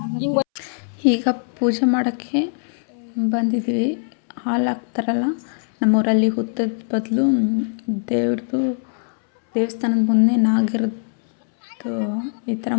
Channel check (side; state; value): right; silent; 65 dB below the other